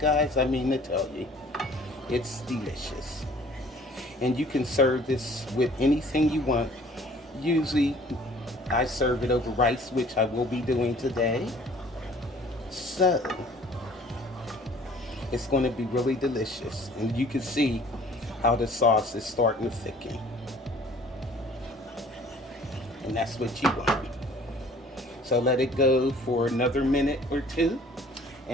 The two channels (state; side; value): normal; both; correlation 0.53